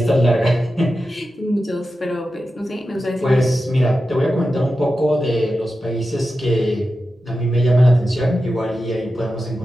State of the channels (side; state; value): both; normal; correlation 0.92